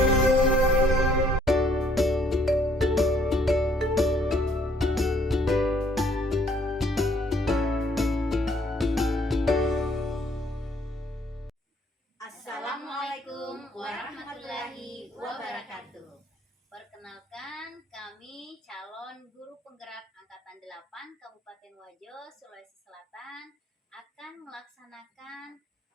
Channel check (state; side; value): normal; both; correlation 0.63